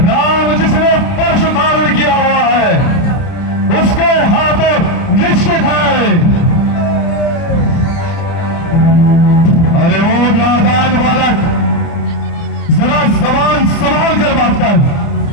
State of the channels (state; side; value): late; right; 30 ms